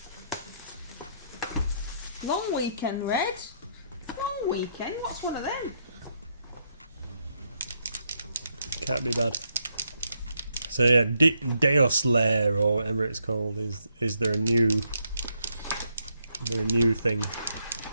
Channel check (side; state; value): both; inverted; correlation -0.77